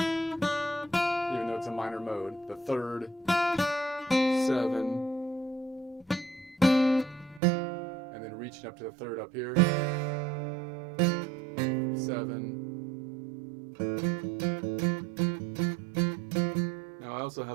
though it's a minor mode. The 3rd, 7. And then reaching up to the 3rd up here. 7. Now I also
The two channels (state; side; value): drops out; left; at 7.4 s